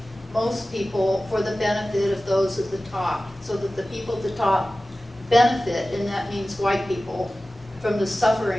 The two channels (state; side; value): normal; both; correlation 0.96